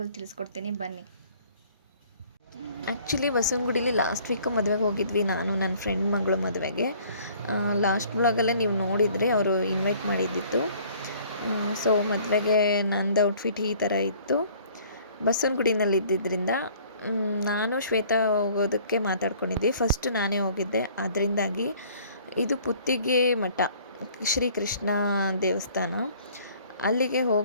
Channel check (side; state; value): both; inverted; correlation -0.55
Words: ತಿಳಿಸ್ಕೊಡ್ತೀನಿ, ಬನ್ನಿ. ಆ್ಯಕ್ಚುಲಿ ಬಸವನಗುಡಿಲಿ ಲಾಸ್ಟ್ ವೀಕು ಮದುವೆಗೆ ಹೋಗಿದ್ವಿ, ನಾನು ನನ್ನ ಫ್ರೆಂಡ್ ಮಗಳು ಮದುವೆಗೆ. ಲಾಸ್ಟ್ ಬ್ಲಾಗಲ್ಲೇ ನೀವು ನೋಡಿದರೆ ಅವರು ಇನ್ವೈಟ್ ಮಾಡಿದ್ದಿತ್ತು. ಸೊ ಮದುವೆಗೆ ನಂದು ಔಟ್ಫಿಟ್ ಈ ಥರ ಇತ್ತು. ಬಸವನಗುಡಿನಲ್ಲಿ ಇದ್ದಿದ್ದರಿಂದ ನಾನು ಶ್ವೇತಾ ಹೋಗೋದಕ್ಕೆ ಮಾತಾಡ್ಕೊಂಡಿದ್ವಿ. ಫಸ್ಟ್ ನಾನೇ ಹೋಗಿದ್ದೆ, ಅದರಿಂದಾಗಿ ಇದು ಪುತ್ತಿಗೆ ಮಠ, ಶ್ರೀಕೃಷ್ಣ ದೇವಸ್ಥಾನ, ಅಲ್ಲಿಗೆ